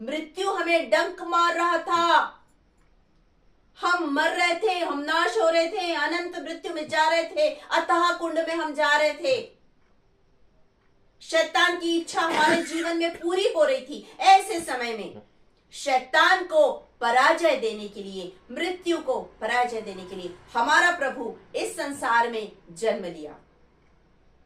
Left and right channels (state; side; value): identical; both; correlation 1.00